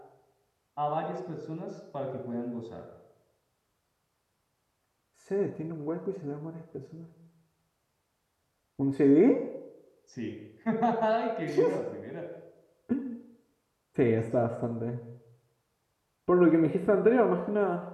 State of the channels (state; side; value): identical; both; correlation 1.00